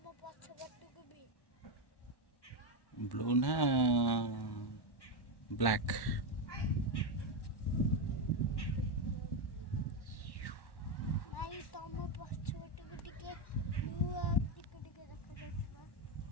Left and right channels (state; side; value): late; right; 1.1 ms